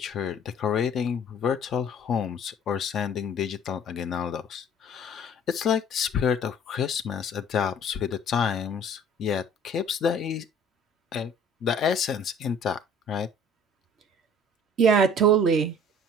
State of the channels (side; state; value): both; normal; correlation 0.51